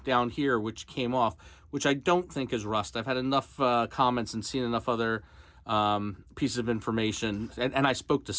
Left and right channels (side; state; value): both; identical; correlation 1.00